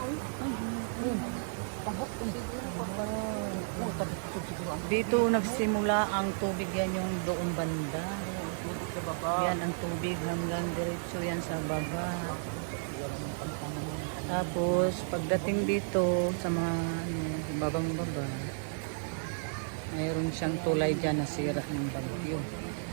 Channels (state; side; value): silent; left; digital silence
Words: Ay, tabok kung siguro pa ba. Oh, tabok siguro. Dito nagsimula ang tubig, yan yung doong banda. Tubig sa baba. Yan ang tubig hanggang diretso yan sa baba. Tapos pagdating dito sa mga babang baba, mayroon siyang tulay dyan na sira ng bagyo.